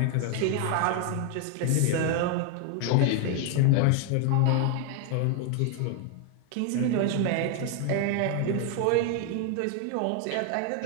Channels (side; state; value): both; different; correlation 0.00